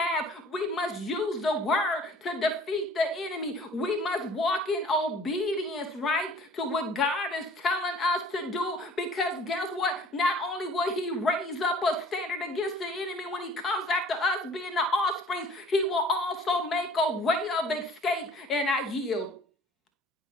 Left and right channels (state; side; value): normal; both; correlation 0.50